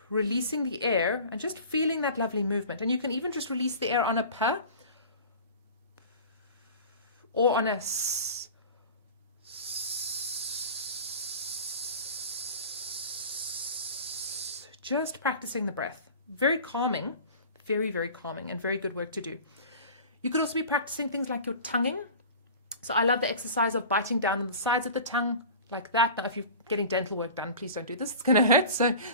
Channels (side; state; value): both; inverted; correlation -0.39